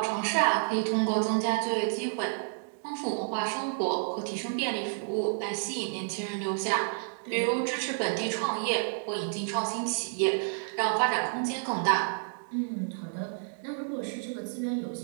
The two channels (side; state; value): left; silent; digital silence